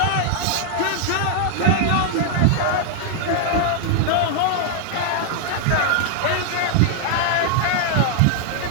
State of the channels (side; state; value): both; different; correlation 0.00